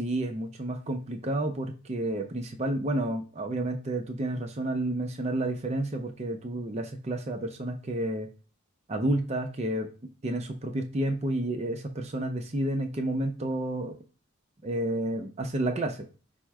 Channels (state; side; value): normal; both; correlation 0.58